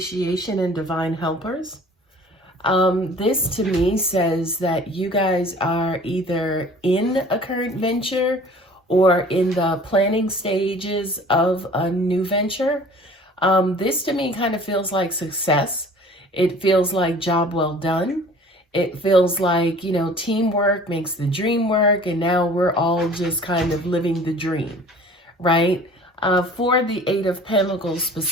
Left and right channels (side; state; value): both; normal; correlation 0.47